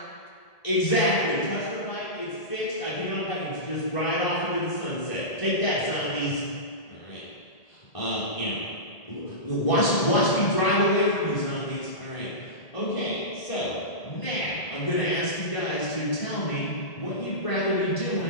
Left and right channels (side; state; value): right; late; 1.8 ms